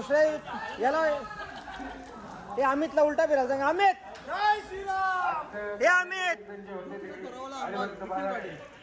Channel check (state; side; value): identical; both; correlation 1.00